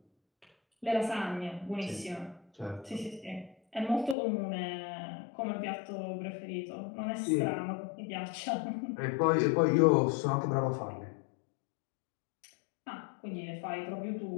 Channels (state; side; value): drops out; right; at 4.2 s